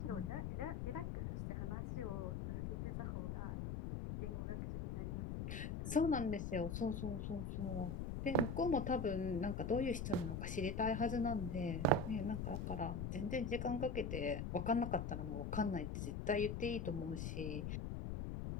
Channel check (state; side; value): noise; left; rumble, 3 dB below the sound